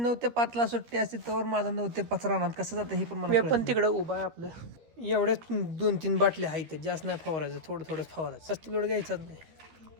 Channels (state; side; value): late; left; 13 ms